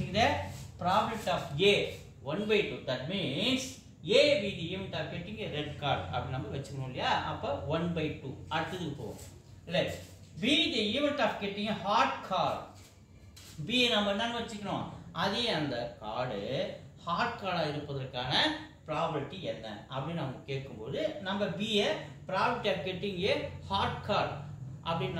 probability of a 1/2. that means a be the event of getting a red card அப்படி நம்ம வெச்சுக்கணும் இல்லையா. அப்ப 1/2. அடுத்ததுக்கு போவோம். let be the event of getting a hard card. b நம்ம என்னன்னு வெச்சுக்கணும், அதே அந்த கார்டு ஹார்ட் கார்டா இருப்பதற்கான probability என்ன அப்படின்னு நம்ம கேட்கும்போது நம்ம b ய probability of getting a hard card அப்படின்னு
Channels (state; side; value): identical; both; correlation 1.00